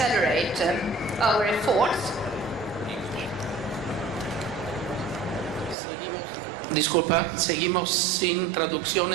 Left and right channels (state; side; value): drops out; left; at 5.8 s